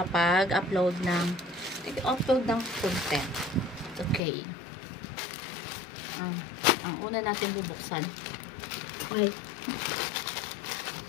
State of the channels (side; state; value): right; drops out; at 4.2 s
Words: ng content. Okay. Ang una natin bubuksan. Okay.